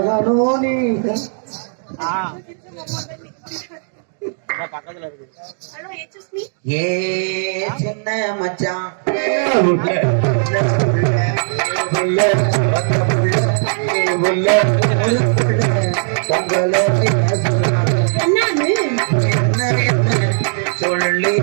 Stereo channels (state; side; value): silent; left; digital silence